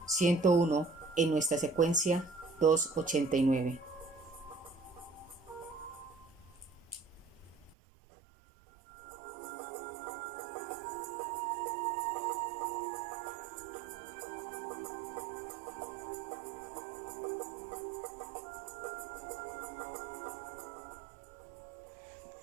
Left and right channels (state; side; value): drops out; left; at 7.8 s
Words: 101, en nuestra secuencia 289.